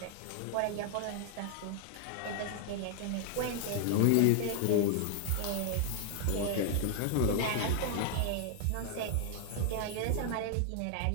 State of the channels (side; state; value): both; different; correlation 0.00